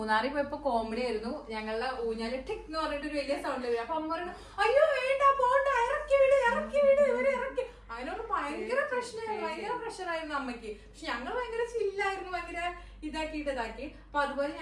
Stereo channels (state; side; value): identical; both; correlation 1.00